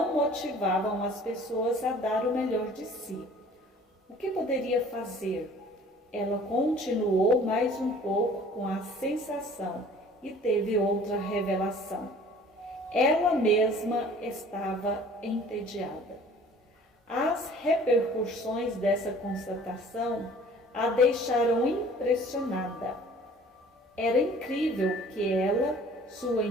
motivavam as pessoas a dar o melhor de si. O que poderia fazer? Ela continuou mais um pouco com a sensação e teve outra revelação. Ela mesma estava entediada. As repercussões dessa constatação a deixaram impressionada. Era incrível que ela, sua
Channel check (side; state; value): both; normal; correlation 0.50